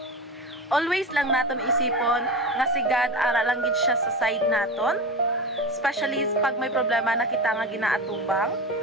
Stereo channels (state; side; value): normal; both; correlation 0.25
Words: Always lang naton isipon nga si God ara lang gid siya sa side naton, especially pag may problema na kita nga ginaatubang,